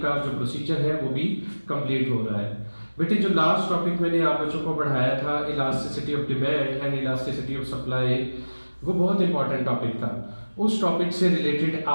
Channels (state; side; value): inverted; both; correlation -1.00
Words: का जो प्रोसीजर है वो भी कंप्लीट हो रहा है। बेटे, जो लास्ट टॉपिक मैंने आप बच्चों को पढ़ाया था, elasticity of demand and elasticity of supply, वो बहुत इंपॉर्टेंट टॉपिक था। उस टॉपिक से रिलेटेड